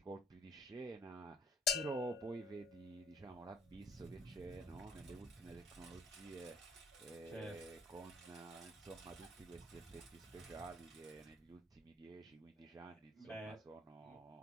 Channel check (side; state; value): both; normal; correlation 0.56